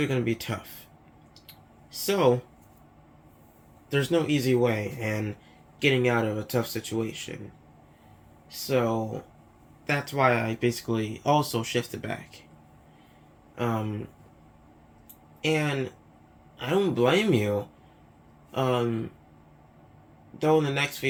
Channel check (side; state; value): both; identical; correlation 1.00